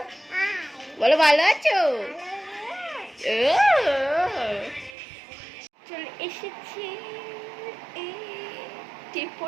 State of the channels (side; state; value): left; drops out; at 5.0 s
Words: বলো ভালো আছো? চলে এসেছি, টিপ